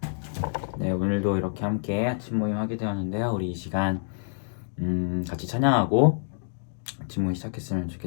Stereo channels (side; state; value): right; silent; digital silence